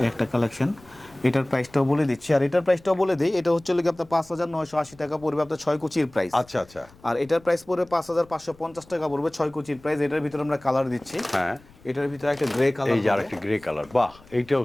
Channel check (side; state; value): left; noise; rumble, 26 dB below the sound